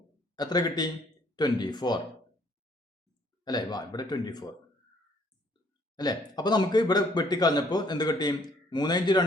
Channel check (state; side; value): normal; both; correlation 0.63